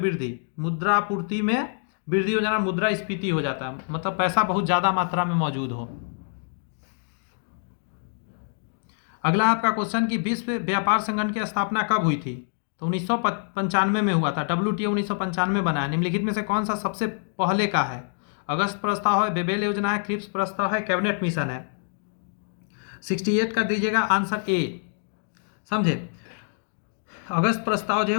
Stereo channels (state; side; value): silent; right; 61 dB below the other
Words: मुद्रा आपूर्ति में वृद्धि हो जाना मुद्रास्फीति हो जाता है, मतलब पैसा बहुत ज़्यादा मात्रा में मौजूद हो। अगला आपका क्वेश्चन कि विश्व व्यापार संगठन की स्थापना कब हुई थी? तो 1995 में हुआ था। WTO 1995 बना है। निम्नलिखित में से कौन सा सबसे पहले का है? अगस्त प्रस्ताव है, बेबेल योजना है, क्रिप्स प्रस्ताव है, कैबिनेट मिशन है। 68 कर दीजिएगा, आंसर ए। समझे? अगस्त प्रस्ताव जो है